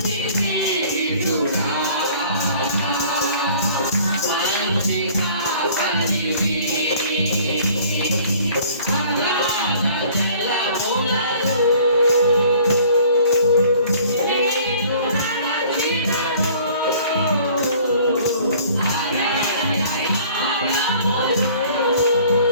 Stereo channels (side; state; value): both; inverted; correlation -0.52